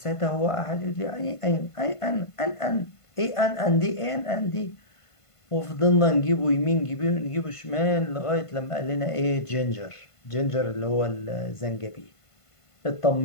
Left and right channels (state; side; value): late; right; 1.5 ms